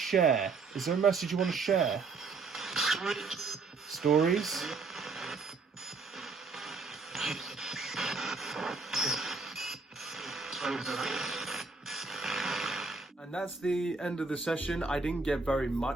Is there a message you want to share? Stories? And that's the end of the session. I didn't get very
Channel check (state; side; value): quieter; left; 4.3 dB